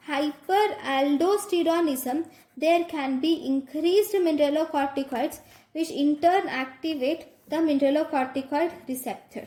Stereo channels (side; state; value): both; identical; correlation 1.00